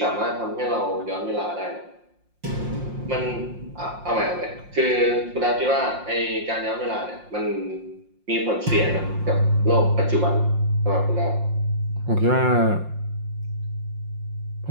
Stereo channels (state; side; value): late; left; 5.6 ms